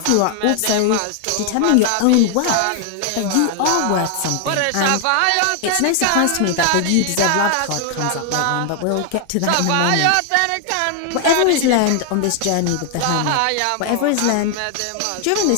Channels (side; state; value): both; different; correlation 0.00